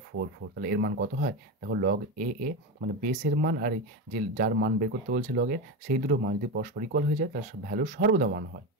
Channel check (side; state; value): both; normal; correlation 0.17